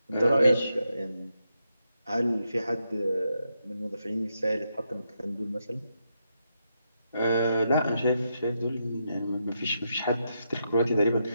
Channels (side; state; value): both; inverted; correlation -0.82